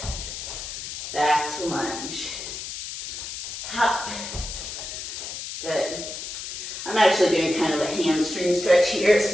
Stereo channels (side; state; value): left; noise; hiss, 7 dB below the sound